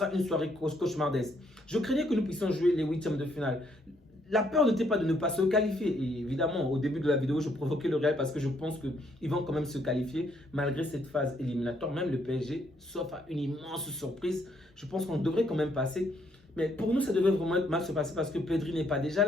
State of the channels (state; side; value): normal; both; correlation 0.71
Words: une soirée cauchemardesque. Je craignais que nous puissions jouer les huitièmes de finale. La peur n'était pas de ne pas se qualifier. Et évidemment, au début de la vidéo, je provoquais le Real parce que je pense qu'ils vont quand même se qualifier malgré cette phase éliminatoire. Même le PSG, sauf à une immense surprise, je pense qu'on devrait quand même passer. Mais pour nous, ça devait vraiment mal se passer parce que Pedri n'est pas déjà